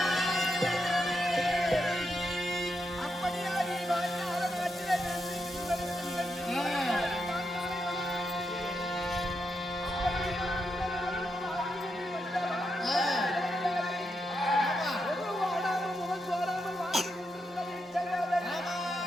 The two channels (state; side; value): normal; both; correlation 0.84